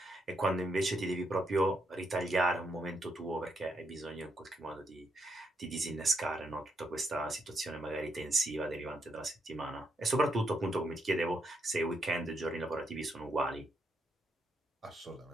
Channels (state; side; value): normal; both; correlation 0.79